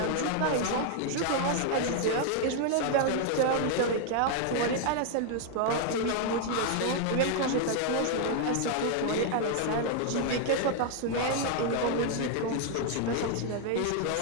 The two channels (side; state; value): both; different; correlation 0.00